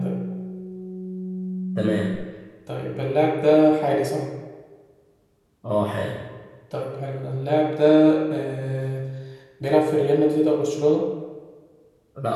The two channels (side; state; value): both; identical; correlation 1.00